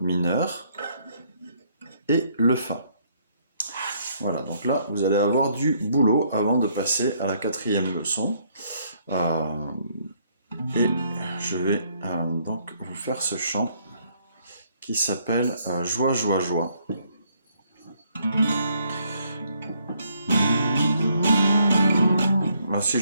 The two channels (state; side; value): inverted; both; correlation -0.69